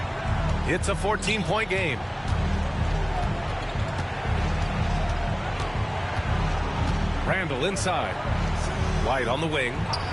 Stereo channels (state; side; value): identical; both; correlation 1.00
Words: It's a 14-point game. Randall inside. White on the wing.